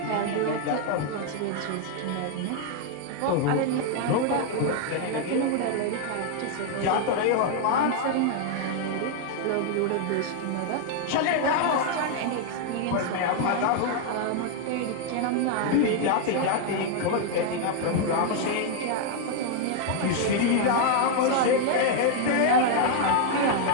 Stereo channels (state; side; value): different; both; correlation 0.00